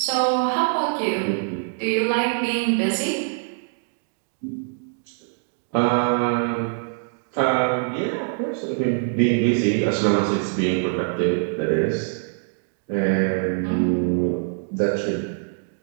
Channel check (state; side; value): silent; left; digital silence